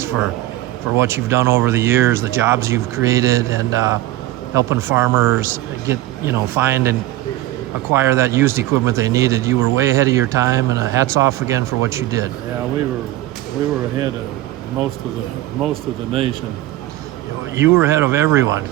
for what you've done over the years, the jobs you've created, and helping farmers get, find and acquire that used equipment they needed. You were way ahead of your time, and hats off again for what you did. Yeah, we were ahead of most of the nation. You were ahead of everyone,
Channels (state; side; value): quieter; left; 16.1 dB